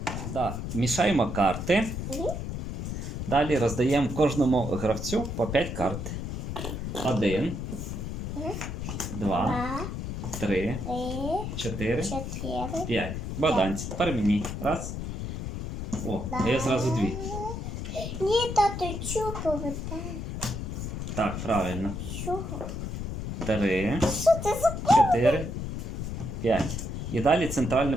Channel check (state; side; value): noise; left; rumble, 5 dB below the sound